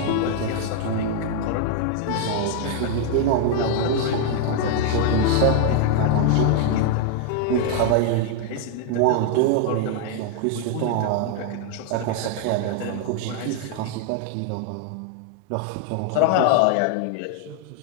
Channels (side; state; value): both; different; correlation 0.00